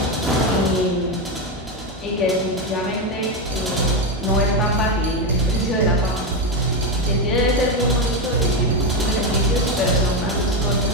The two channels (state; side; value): normal; both; correlation 0.10